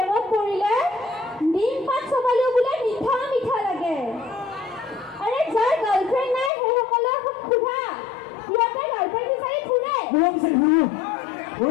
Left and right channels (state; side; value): drops out; right; at 6.5 s